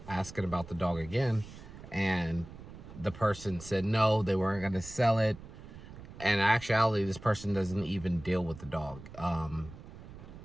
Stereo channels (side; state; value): right; noise; rumble, 15 dB below the sound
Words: asking about the dog again, and the person said no, they weren't going to sell it. And in actuality, this person doesn't even deal with the dog.